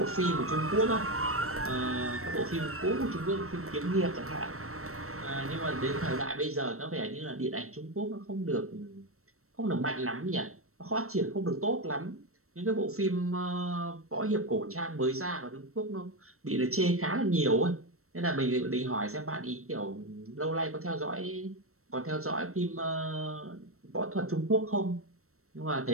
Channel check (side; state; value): left; late; 0.63 ms